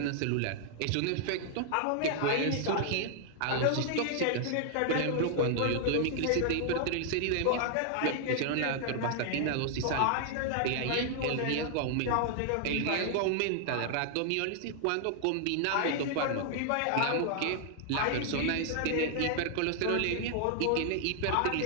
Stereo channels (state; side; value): different; both; correlation 0.00